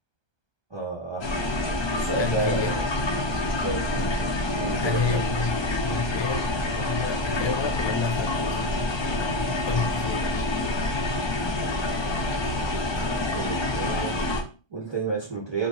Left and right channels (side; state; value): right; late; 1.2 ms